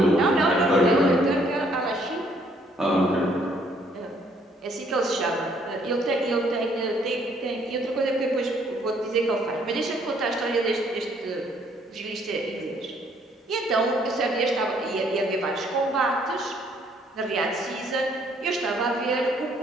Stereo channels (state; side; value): normal; both; correlation 0.65